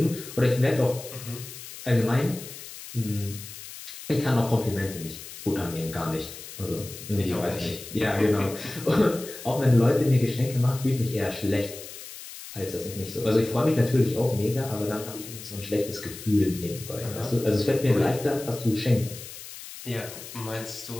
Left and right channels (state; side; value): noise; left; hiss, 13 dB below the sound